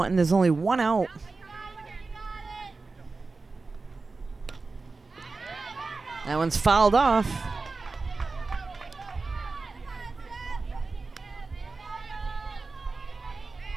There's only one out. That one's fouled off.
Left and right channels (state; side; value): quieter; left; 3.9 dB